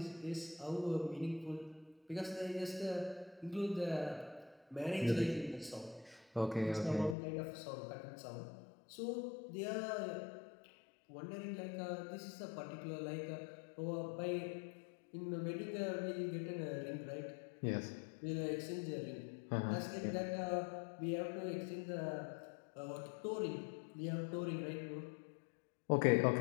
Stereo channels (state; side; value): drops out; right; at 7.2 s